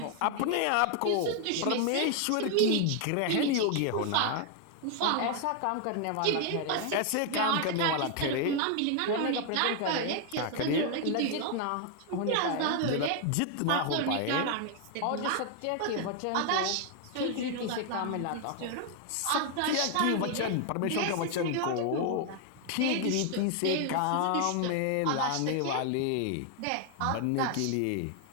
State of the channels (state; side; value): different; both; correlation 0.00